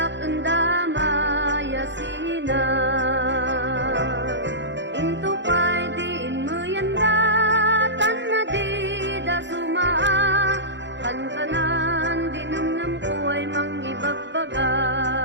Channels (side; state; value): left; late; 0.53 ms